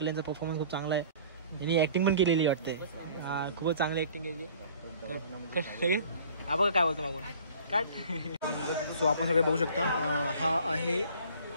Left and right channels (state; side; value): inverted; both; correlation -0.50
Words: यांचा परफॉर्मन्स खूप चांगला आहे. यांनी ॲक्टिंग पण केलेली वाटते. खूपच चांगली ॲक्टिंग केली. हा बघा काय बोलतो मागून काट. सो आपण सगळे बघू शकता हा आहे